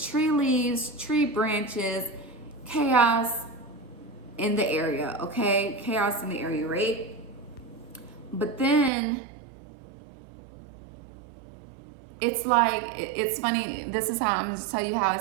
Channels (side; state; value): left; drops out; at 8.9 s